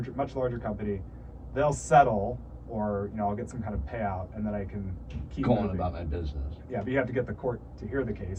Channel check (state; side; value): identical; both; correlation 1.00